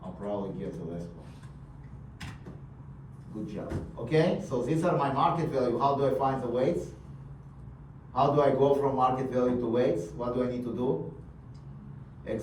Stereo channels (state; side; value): identical; both; correlation 1.00